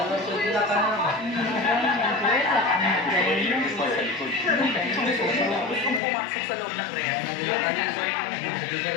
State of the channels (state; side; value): drops out; right; at 6.0 s